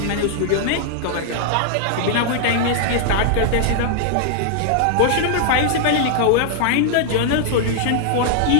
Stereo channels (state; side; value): different; both; correlation -0.01